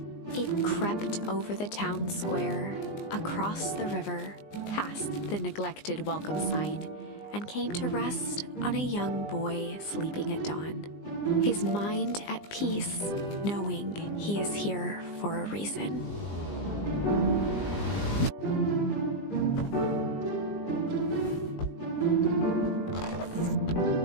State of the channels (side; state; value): right; late; 20 ms